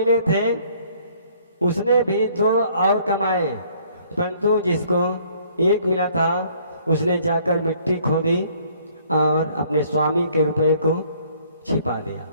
थे उसने भी 2 और कमाए, परंतु जिसको 1 मिला था उसने जाकर मिट्टी खोदी और अपने स्वामी के रुपए को छिपा दिया।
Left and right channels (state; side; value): inverted; both; correlation -0.61